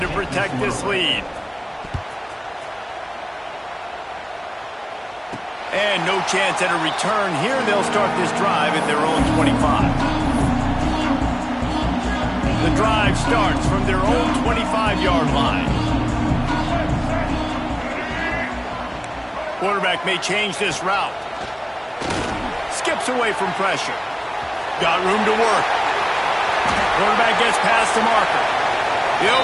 protect this lead. And no chance at a return here. They'll start this drive at their own 25. The drive starts from their own 25-yard line. Quarterback may change this route. Skips away from pressure. Got room to work. Quarterback gets past the marker.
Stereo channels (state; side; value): identical; both; correlation 1.00